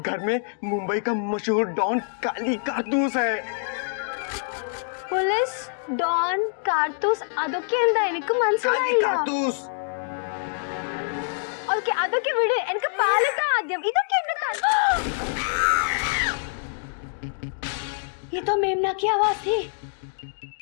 घर में मुंबई का मशहूर डॉन काली कारतूस है। പോലീസ് ഡോൺ കാർത്തൂസ് അതൊക്കെ എന്താ എനിക്ക് काली മനസ്സിലായില്ല कारतूस। ഓക്കെ അതൊക്കെ വിട് എനിക്ക് പാലത്താ ആദ്യം ഇതൊക്കെ എന്റെ ये तो मेमना की आवाज थी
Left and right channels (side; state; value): right; silent; digital silence